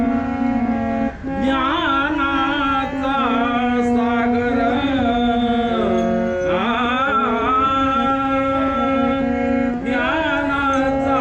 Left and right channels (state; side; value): identical; both; correlation 1.00